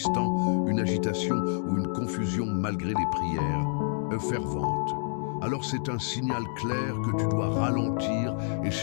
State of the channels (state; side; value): silent; right; digital silence